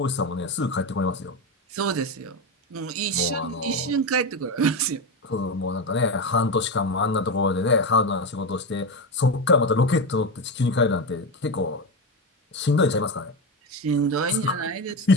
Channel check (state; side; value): normal; both; correlation 0.15